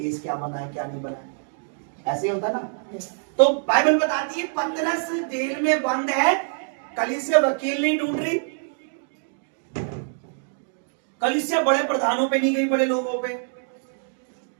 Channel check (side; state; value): left; silent; digital silence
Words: क्या बना है क्या नहीं बना है, ऐसे ही होता ना। तो बाइबल बताती है पतरस जेल में बंद है, कलीसिया वकील नहीं ढूंढ रही, कलीसिया बड़े प्रधानों पे नहीं गई, बड़े लोगों पे,